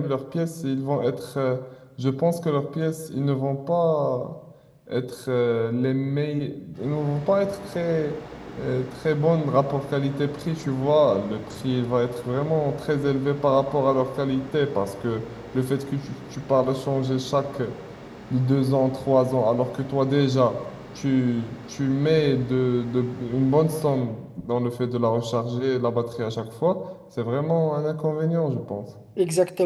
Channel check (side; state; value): both; identical; correlation 1.00